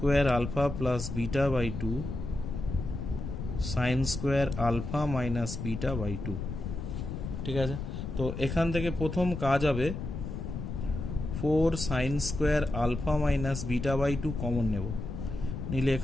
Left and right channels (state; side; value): noise; left; rumble, 5 dB below the sound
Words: alpha plus beta by 2 sine square alpha minus beta by 2। ঠিক আছে, তো এখান থেকে প্রথম কাজ হবে 4 sine square alpha minus beta by 2 common নেব, নিলে